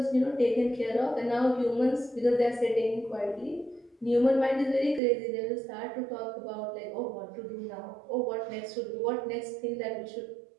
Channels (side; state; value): left; drops out; at 5.0 s